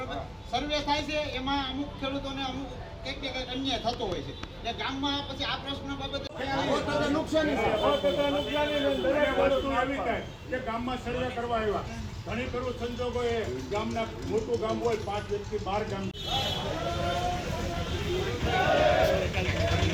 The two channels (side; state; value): both; identical; correlation 1.00